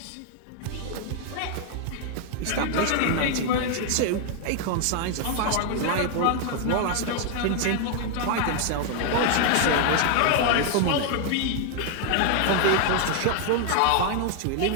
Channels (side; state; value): both; different; correlation 0.00